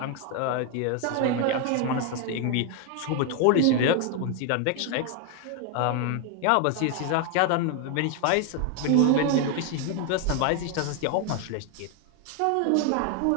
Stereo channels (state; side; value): different; both; correlation 0.01